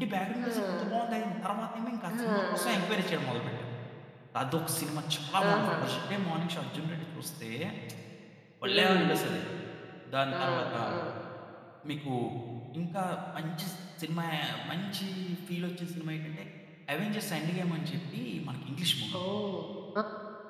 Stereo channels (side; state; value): both; identical; correlation 1.00